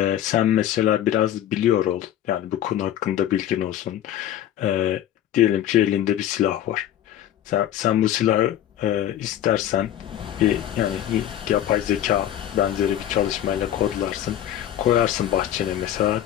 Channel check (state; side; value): quieter; right; 11.5 dB